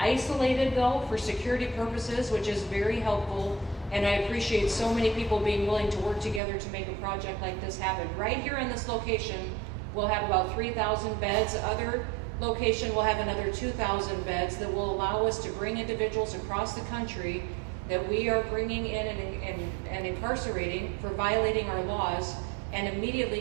though for security purposes, which is very helpful. And I appreciate so many people being willing to work together to make a project like this happen. Right here in this location, we'll have about 3,000 beds. Other location will have another 2,000 beds that will allow us to bring individuals across the country that we are bringing in and incarcerating for violating our laws, and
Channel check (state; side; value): drops out; left; at 6.4 s